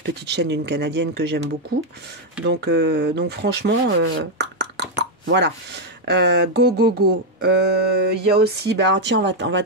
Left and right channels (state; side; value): normal; both; correlation 0.02